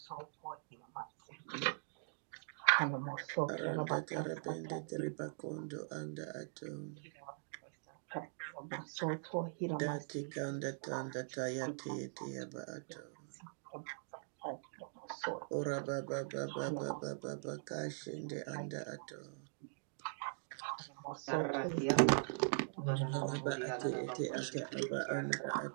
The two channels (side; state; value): left; silent; digital silence